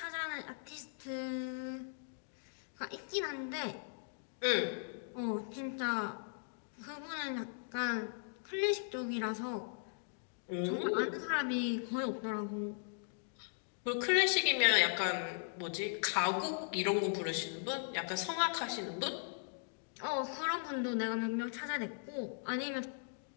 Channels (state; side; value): silent; right; digital silence